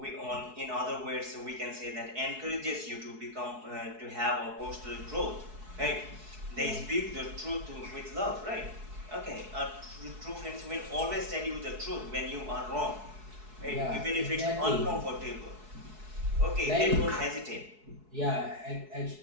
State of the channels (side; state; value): left; late; 4.7 ms